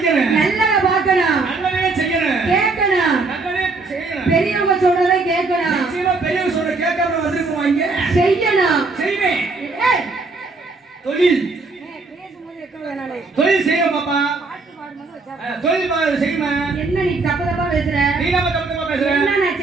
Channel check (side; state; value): left; quieter; 3.8 dB